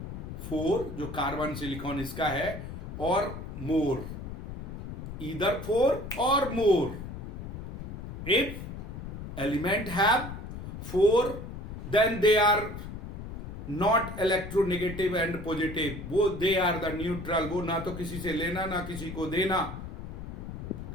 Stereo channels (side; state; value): left; noise; rumble, 8 dB below the sound